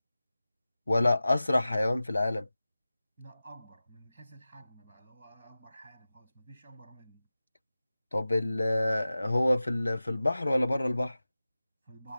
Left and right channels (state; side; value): inverted; both; correlation -0.96